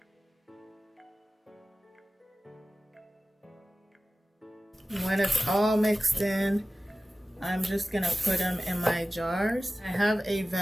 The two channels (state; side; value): normal; both; correlation 0.95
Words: When it's all mixed in, I'm just gonna put them in my jars. I have a